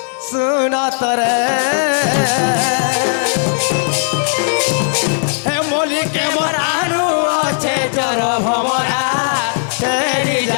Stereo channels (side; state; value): right; silent; 69 dB below the other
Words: শুনতরে হে মলিকে মরানু আছে জর ভমরা তেরি